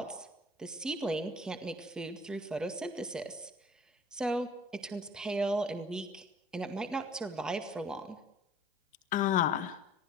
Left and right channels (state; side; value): normal; both; correlation 0.51